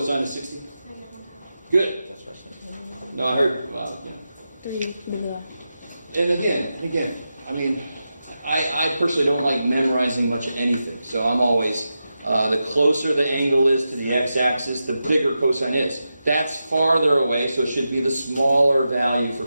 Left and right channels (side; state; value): both; inverted; correlation -0.90